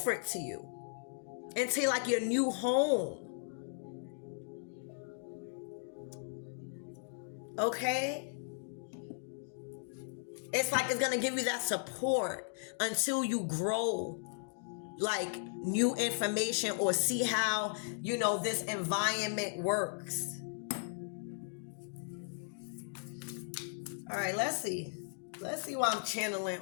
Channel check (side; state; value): right; silent; digital silence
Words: to you into like your new home. Okay? It's like it's going to give you that support until you grow like new information or see how, this environment works. All right, let's see. Let's see why I'm channeling